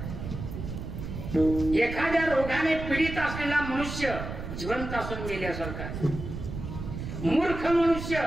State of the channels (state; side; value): noise; right; rumble, 7 dB below the sound